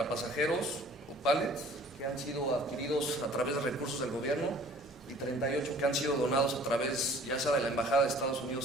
pasajeros, pallets, que han sido adquiridos a través de recursos del gobierno, y 38 que han sido donados a través ya sea de la Embajada de Estados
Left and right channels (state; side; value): normal; both; correlation 0.51